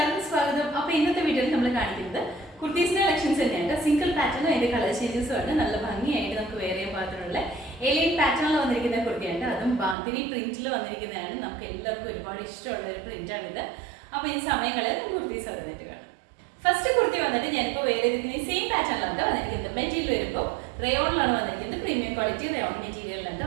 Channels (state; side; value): drops out; left; at 10.0 s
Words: സ്വാഗതം. അപ്പോൾ ഇന്നത്തെ വീഡിയോയിൽ നമ്മൾ കാണിക്കുന്നത് കുർത്തീസിന്റെ കളക്ഷൻസ് തന്നെയാണ്. സിംഗിൾ പാറ്റേണും അതിന്റെ കളർ ചേഞ്ചസും ആണ്. നല്ല ഭംഗിയായിട്ട് നമുക്ക് വേറെ പാറ്റേണുള്ള ഏലിയൻ പാറ്റേണിൽ വന്നിരിക്കുന്ന കുർത്തിയുണ്ട്. അതും ബാന്തിനി പ്രിന്റിൽ വന്നിരിക്കുന്നതാണ്. നമുക്ക് എല്ലാവർക്കും ഒരുപാട് ഇഷ്ടമുള്ള ഒരു പ്രിന്റാണിത്. അപ്പോൾ ഈ സമയങ്ങളിൽ കുർത്തീസ് വന്നിട്ട് കാണാം. ഫസ്റ്റ് കുർത്തി വന്നിട്ട് ഞാനിപ്പോൾ വേറെ സെയിം പാറ്റേണിലാണ് വന്നിരിക്കുന്നത്. മെറ്റീരിയൽ വരുമ്പോൾ റയോണിലാണ് വന്നിരിക്കുന്നത്. പ്രീമിയം ക്വാളിറ്റി റയോൺ മെറ്റീരിയലിലാണ്